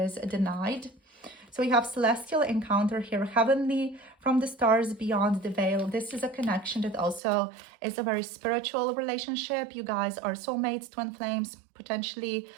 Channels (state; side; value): drops out; left; at 7.2 s